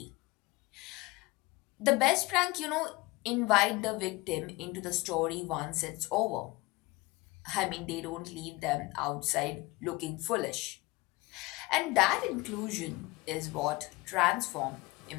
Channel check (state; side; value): quieter; right; 22.6 dB